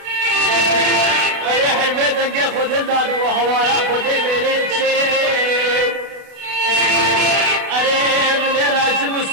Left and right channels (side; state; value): left; late; 32 ms